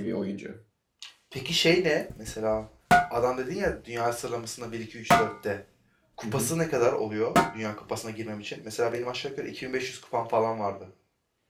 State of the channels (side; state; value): both; identical; correlation 1.00